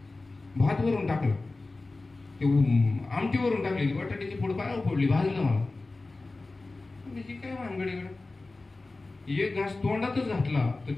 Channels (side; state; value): right; quieter; 3.3 dB